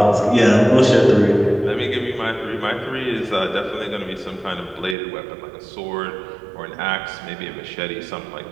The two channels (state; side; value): drops out; left; at 5.0 s